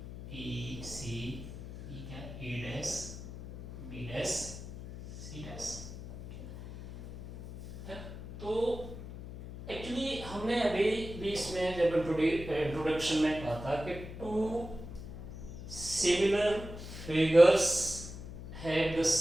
B C, ये क्या A dash B dash C dash. तो एक्चुअली हमने अभी भी इसमें जब इंट्रोडक्शन में कहा था कि two similar figures have the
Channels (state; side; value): noise; left; hum, 11 dB below the sound